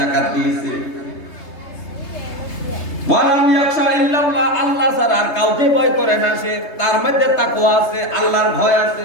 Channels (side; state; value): right; late; 3.3 ms